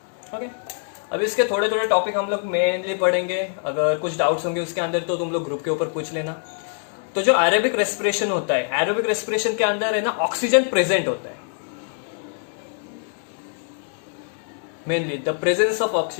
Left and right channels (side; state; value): right; silent; 56 dB below the other